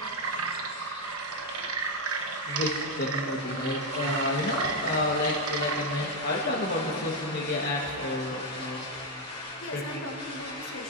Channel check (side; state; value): both; normal; correlation 0.04